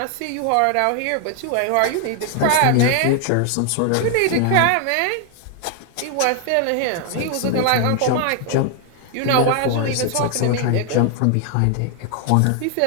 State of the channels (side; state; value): both; different; correlation 0.00